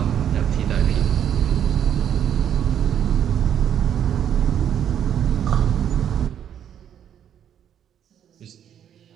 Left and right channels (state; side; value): quieter; left; 9.4 dB